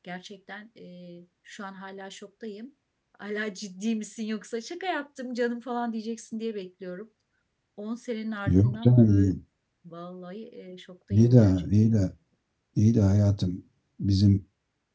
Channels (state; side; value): identical; both; correlation 1.00